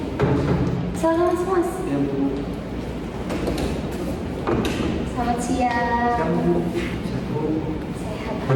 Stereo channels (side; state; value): both; identical; correlation 1.00